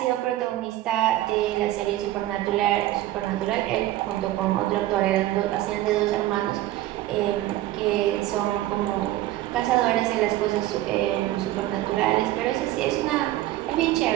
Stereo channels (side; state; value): left; quieter; 15.1 dB